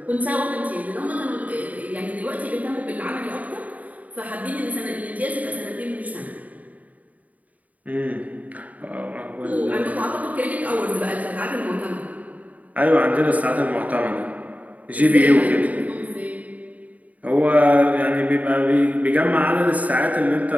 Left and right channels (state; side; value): late; left; 0.073 ms